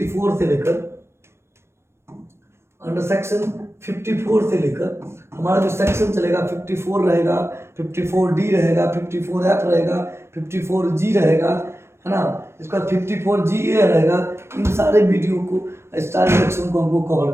से लेकर, अंडर सेक्शन 54 से लेकर हमारा जो सेक्शन चलेगा 54 रहेगा, 54D रहेगा, 54F रहेगा, 54G रहेगा, है ना। इसका 54GA रहेगा। इन सारे वीडियो को, स्टार डिडक्शन को हमको कवर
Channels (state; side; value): late; left; 0.13 ms